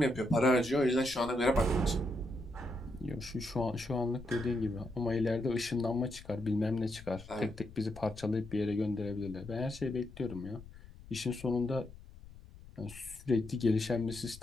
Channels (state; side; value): noise; left; rumble, 18 dB below the sound